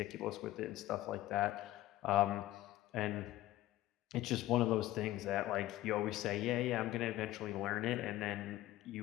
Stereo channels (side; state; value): right; quieter; 15.6 dB